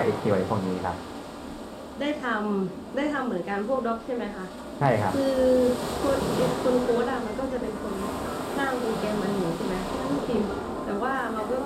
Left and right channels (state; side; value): identical; both; correlation 1.00